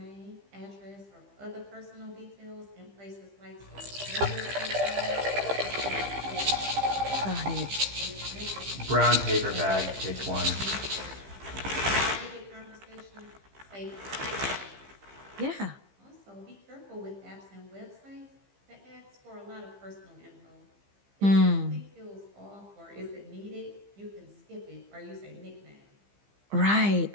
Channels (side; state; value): left; late; 15 ms